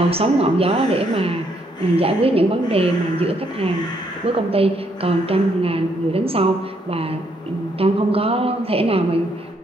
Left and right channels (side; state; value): both; normal; correlation 0.72